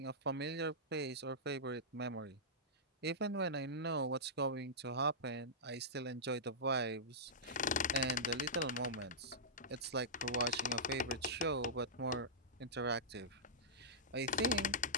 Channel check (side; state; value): both; normal; correlation -0.14